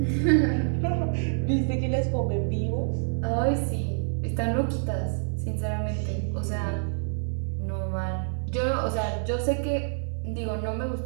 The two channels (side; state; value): left; silent; 55 dB below the other